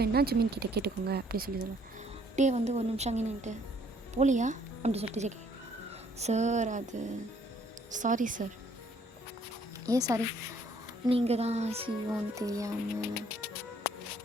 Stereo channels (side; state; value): both; normal; correlation 0.63